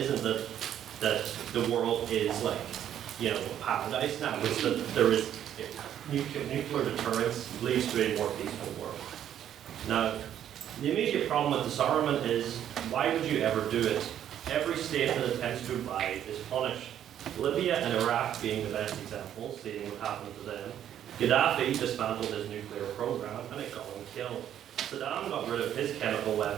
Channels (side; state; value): left; quieter; 10.4 dB